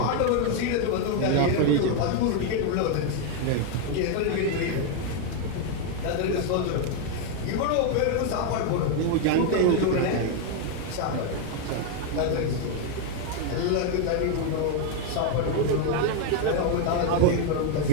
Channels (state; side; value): different; both; correlation 0.01